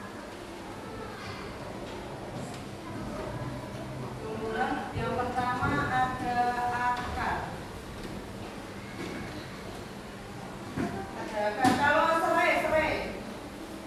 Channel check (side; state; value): both; identical; correlation 1.00